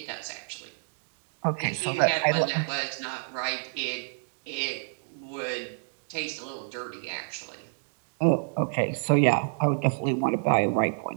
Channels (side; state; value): left; silent; digital silence